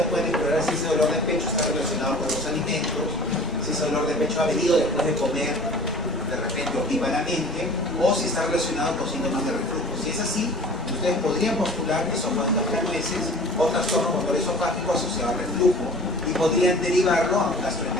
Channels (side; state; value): both; normal; correlation 0.44